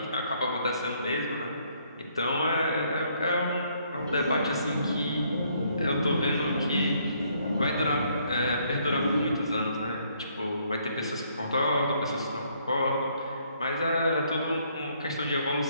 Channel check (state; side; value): inverted; both; correlation -0.68